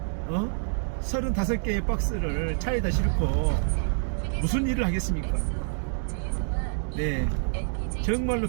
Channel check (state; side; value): silent; left; digital silence